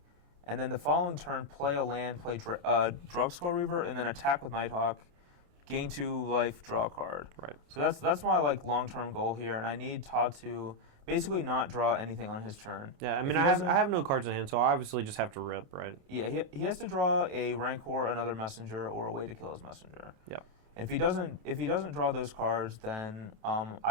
and then the following turn play a land, play Drugskull Reaver, and then attack with Nighthawk, gain 2 life, draw a card. Right. So that's my like long-term goal here, and I need Todd to basically not draw anything on his turn. Yeah, I mean, I have no cards in hand, so I obviously just have to rip, right? Yeah, he has to draw a Rancor, another messenger, or a way to kill his messenger. Yep. If he doesn't draw those cards, then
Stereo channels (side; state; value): left; late; 29 ms